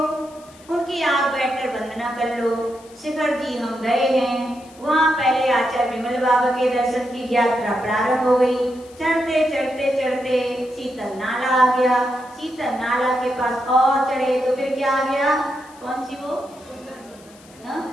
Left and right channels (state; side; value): noise; left; hiss, 25 dB below the sound